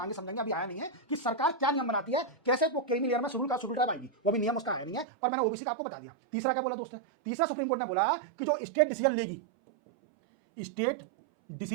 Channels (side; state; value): left; drops out; at 5.1 s